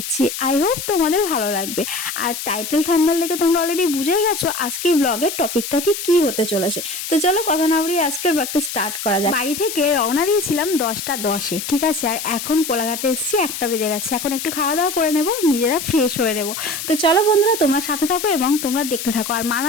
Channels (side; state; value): left; noise; hiss, 6 dB below the sound